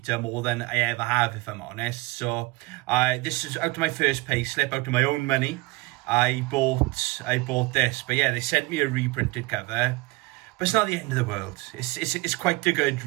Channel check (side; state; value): left; quieter; 23.4 dB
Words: more than I ever have, if I'm honest. So this is out of my first pay slip, out of my own money. I bought this, but yeah, they sent me a reprinted cover. But it's not the end of the world. It's quite a good